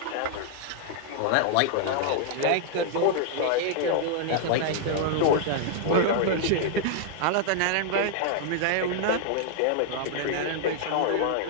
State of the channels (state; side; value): different; both; correlation -0.01